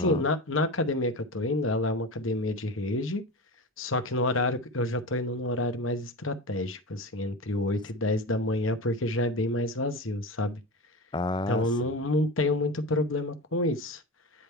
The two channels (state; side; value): normal; both; correlation 0.26